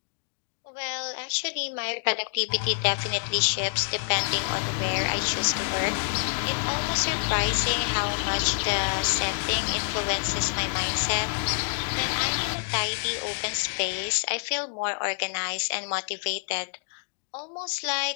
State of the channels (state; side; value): silent; right; digital silence